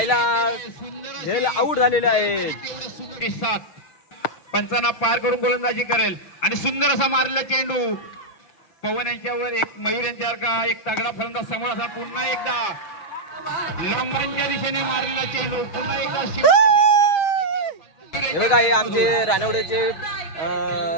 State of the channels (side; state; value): right; late; 6.4 ms